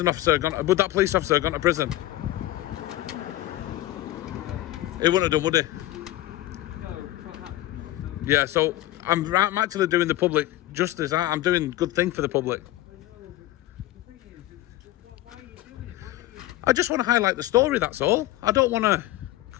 officer have gone to prison? He wouldn't have done, would he? No, perhaps not. No. Yeah. So I'm actually doing the public justice. I'm doing good thing for the public. I just want to highlight the story, that's all. I don't want to,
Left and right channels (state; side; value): quieter; right; 15.8 dB